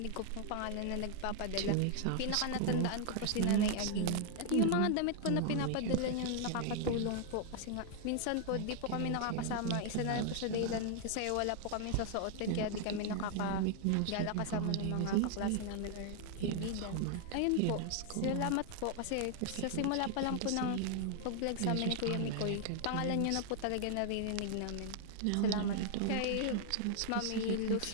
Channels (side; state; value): both; different; correlation 0.00